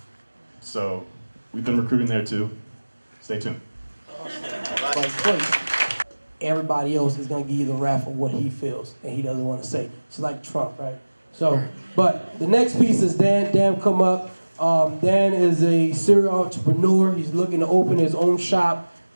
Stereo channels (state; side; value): inverted; both; correlation -1.00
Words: So we've been recruiting there too. Stay tuned. Everybody else is gonna give you the rap of what he feels and he doesn't want to say. It's like Trump, right? So, but the next piece is Dan. Dan, come up. Dan is a serial entrepreneur. He's looking to open his own shop.